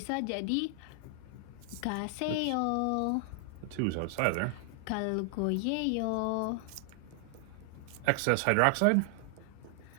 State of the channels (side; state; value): both; different; correlation 0.00